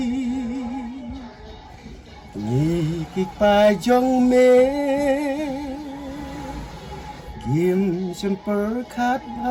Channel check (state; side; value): identical; both; correlation 1.00